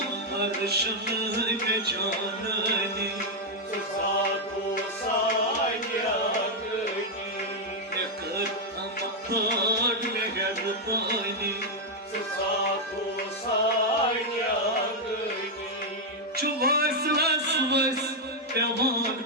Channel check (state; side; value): normal; both; correlation 0.00